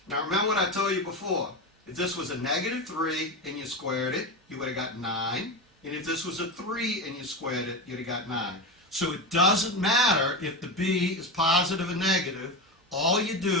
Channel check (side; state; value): both; normal; correlation 0.20